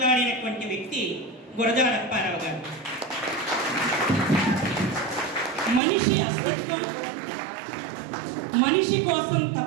వ్యక్తి గురజాడ అప్పారావు గారు. మనిషి అస్తిత్వం, మనిషి కోసం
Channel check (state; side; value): drops out; left; at 5.8 s